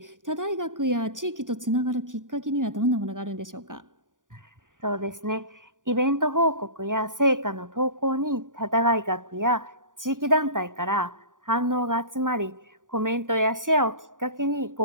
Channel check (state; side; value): late; left; 0.88 ms